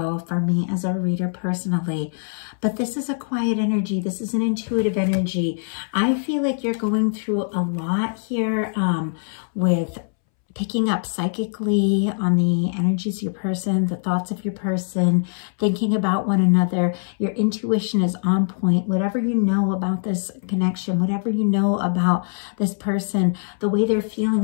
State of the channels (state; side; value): silent; right; 64 dB below the other